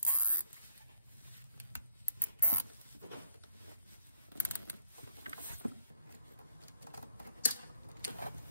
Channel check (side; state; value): both; inverted; correlation -0.68